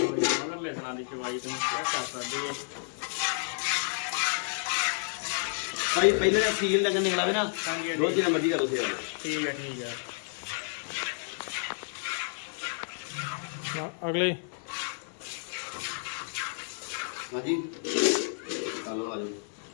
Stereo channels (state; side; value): silent; right; digital silence